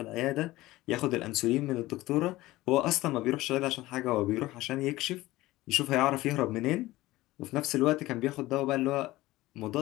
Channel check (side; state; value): right; quieter; 18.0 dB